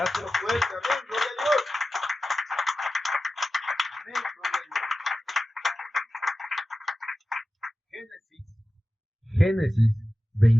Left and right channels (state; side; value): normal; both; correlation 0.94